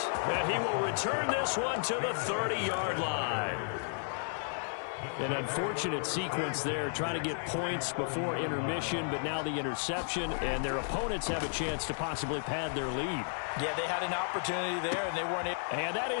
And he will return this one to the 30-yard line. An unfortunate sequence there, trying to get points before intermission, but now the interception, and their opponents have a chance to possibly pad their lead. Yeah, they had an opportunity there, and they weren't able. And that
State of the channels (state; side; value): silent; right; digital silence